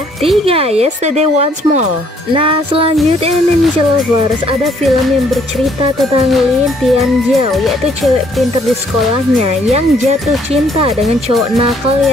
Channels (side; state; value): both; normal; correlation 0.65